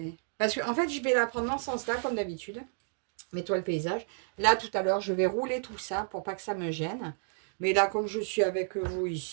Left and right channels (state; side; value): silent; left; digital silence